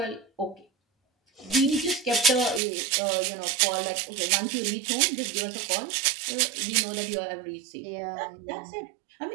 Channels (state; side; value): drops out; left; at 2.6 s